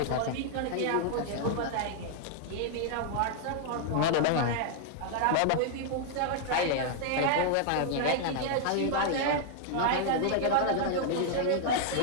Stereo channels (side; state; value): both; different; correlation 0.00